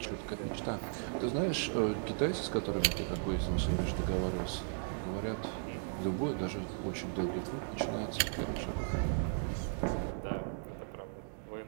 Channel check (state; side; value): silent; left; digital silence